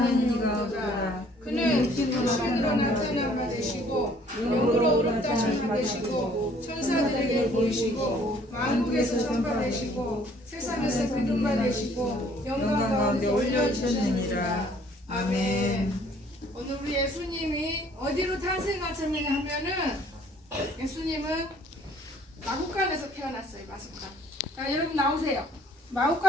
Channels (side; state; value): both; normal; correlation 0.58